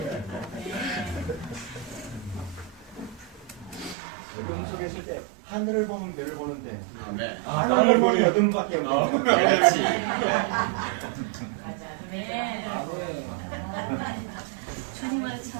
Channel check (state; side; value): drops out; left; at 4.0 s